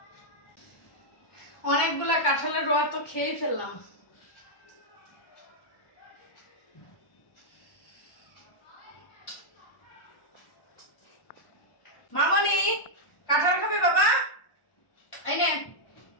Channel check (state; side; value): late; right; 1.1 ms